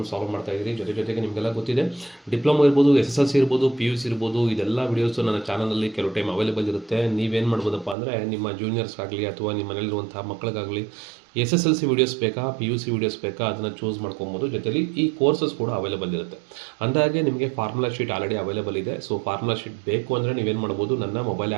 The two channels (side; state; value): left; drops out; at 8.0 s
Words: ಸಾಲ್ವ್ ಮಾಡ್ತಾ ಇದ್ದೀವಿ. ಜೊತೆಗೆ ನಿಮಗೆಲ್ಲ ಗೊತ್ತಿದೆ, ಡಿಪ್ಲೊಮಾ ಇರ್ಬೋದು, SSLC ಇರ್ಬೋದು, PUC ಇರ್ಬೋದು, ಇದೆಲ್ಲ ವೀಡಿಯೋಸು ನನ್ನ ಚಾನಲಲ್ಲಿ ಕೆಲವು ಟೈಮ್ ಅವೈಲೇಬಲ್ ಇರುತ್ತೆ. ನೀವೇನು ಮಾಡ್ಬೋದಪ್ಪ ಅಂದರೆ ನಿಮ್ಮ ಜೂನಿಯರ್ಸ್ಗಾಗಲಿ ಅಥವಾ ನಿಮ್ಮ ಮನೇಲಿರುವಂಥ ಮಕ್ಕಳಿಗಾಗಲಿ SSLC ವೀಡಿಯೋಸ್ ಬೇಕಾ, PUC ವೀಡಿಯೋಸ್ ಬೇಕಾ, ಅದನ್ನು ಚೂಸ್ ಮಾಡ್ಕೊಬೋದು. ಜೊತೆಲಿ ಈ ಕೋರ್ಸಸ್ ಕೂಡ ಅವೈಲೇಬಲ್ ಇರುತ್ತೆ. ಅಂದಾಗೆ ನಿಮಗೆ ಫಾರ್ಮುಲಾ ಶೀಟ್ ಆಲ್ರೆಡಿ ಅವೈಲೇಬಲ್ ಇದೆ. ಸೊ ಫಾರ್ಮುಲಾ ಶೀಟ್ ಬೇಕು ಅಂದರೆ ನೀವೇನು ಮಾಡ್ಬೋದು, ನನ್ನ ಮೊಬೈಲ್